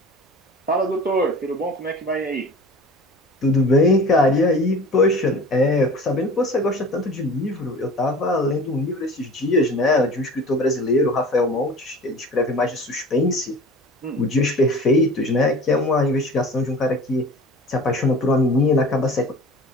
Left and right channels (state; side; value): normal; both; correlation 0.40